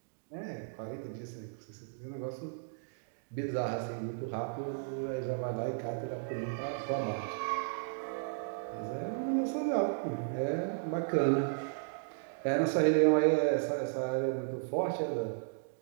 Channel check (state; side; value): silent; left; digital silence